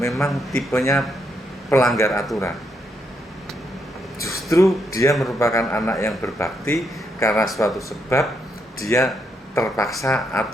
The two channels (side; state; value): both; normal; correlation 0.78